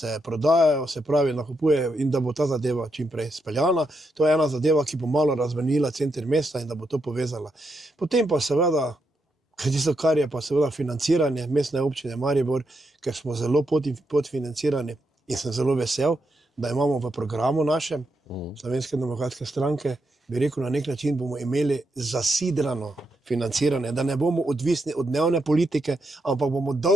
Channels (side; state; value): both; normal; correlation 0.82